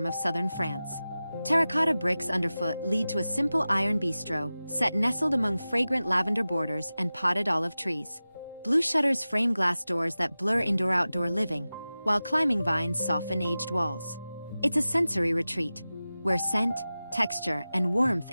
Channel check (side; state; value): both; inverted; correlation -0.96